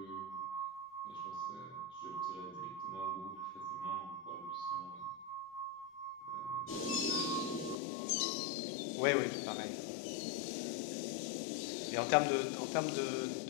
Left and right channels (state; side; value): drops out; right; at 7.8 s